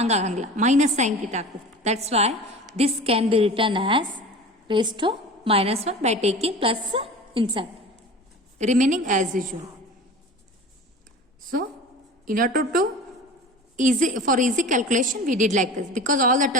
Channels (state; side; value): normal; both; correlation 0.36